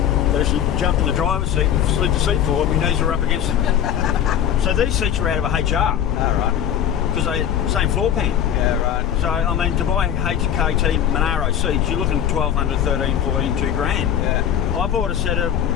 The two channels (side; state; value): right; quieter; 9.7 dB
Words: she jumped in the driver's seat and slid the seat forward. My knees were up against it. So these seats are out of a HR All right. because they same floor pan. Yeah, right. So I mean, to buy HKT Monaro seats, you're looking 1,200, 13, 14, $2 grand. Yeah. I bought a set of